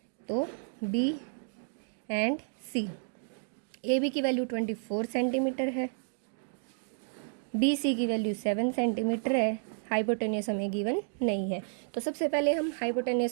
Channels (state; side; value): silent; left; digital silence